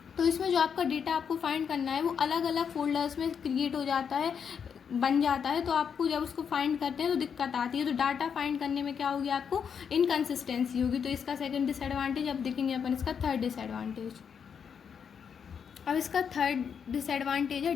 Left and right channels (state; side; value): quieter; right; 7.1 dB